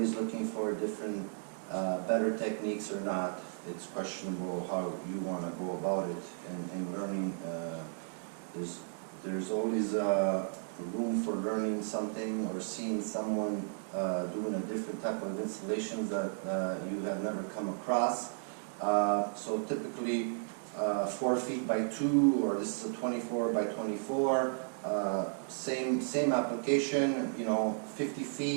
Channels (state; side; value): silent; left; digital silence